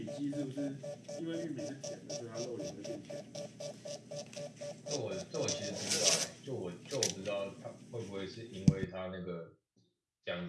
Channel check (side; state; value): both; identical; correlation 1.00